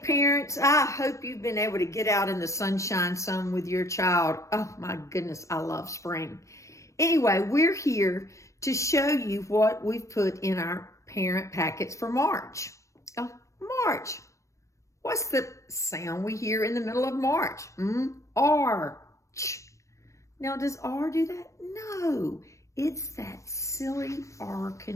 parents, I hope you've been able to get out in the sunshine some with your child. Oh my goodness, I love spring. Anyway, we're here to show you what we've put in our parent packets for March. Oh, March. What's the sound we hear in the middle of March? Arch. Now, does R do that? No, it's that silly R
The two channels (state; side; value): late; right; 0.15 ms